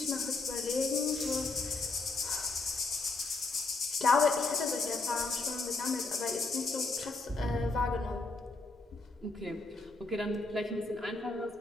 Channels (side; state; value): right; quieter; 3.4 dB